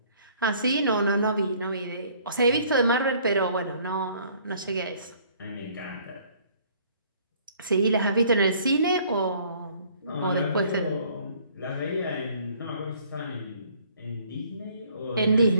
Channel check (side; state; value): both; inverted; correlation -0.59